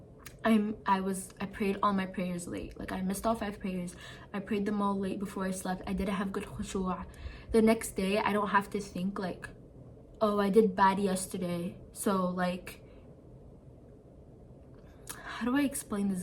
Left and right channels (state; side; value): identical; both; correlation 1.00